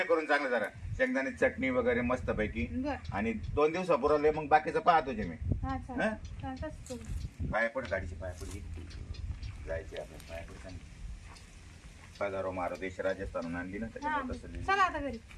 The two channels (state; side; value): identical; both; correlation 1.00